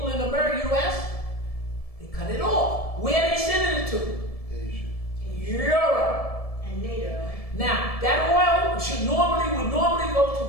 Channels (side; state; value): right; late; 1.7 ms